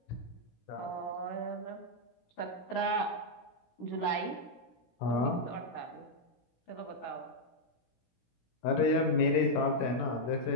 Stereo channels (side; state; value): right; late; 17 ms